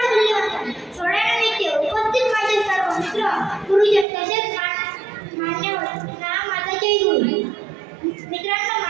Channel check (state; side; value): drops out; left; at 4.0 s